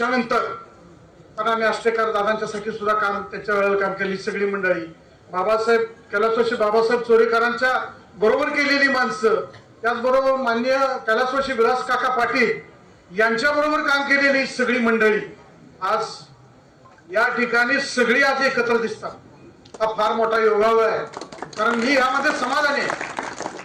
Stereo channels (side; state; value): both; identical; correlation 1.00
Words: कारण आम्ही आष्टेकर दादांच्यासाठी सुद्धा काम त्याच्या वेळेला काम केली सगळी मंडळी, बाबासाहेब कैलासवासी बाबासाहेब चोरेकरांच्या बरोबर केलेली माणसं, त्याचबरोबर माननीय कैलासवासी विलास काका पाटील यांच्या बरोबर काम केलेली सगळी मंडळी आज या ठिकाणी सगळी आज एकत्र दिसतात. हा फार मोठा योगायोग आहे. कारण मी यामध्ये समाधानी